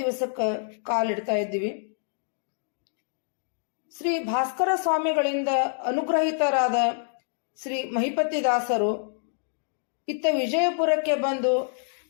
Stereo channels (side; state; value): right; silent; digital silence